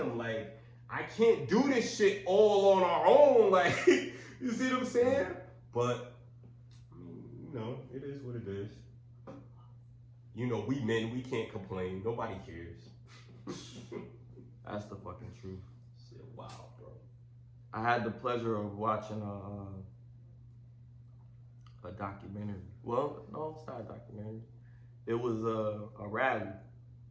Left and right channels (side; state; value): both; identical; correlation 1.00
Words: like, I can't do this shit all on our own. Like, you see what I'm saying? But, I mean, you know, it is what it is. You know, we men, we can't complain. Nobody cares. That's the fucking truth. Shit, wow, bro. I had the pleasure of watching a documentary. Well, no, it's not a documentary. It was a rally.